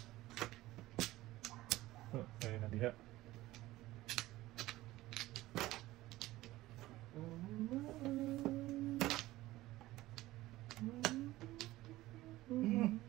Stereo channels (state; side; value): quieter; left; 17.2 dB